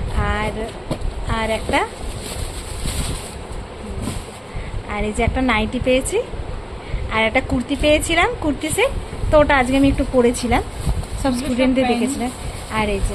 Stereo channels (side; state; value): both; identical; correlation 1.00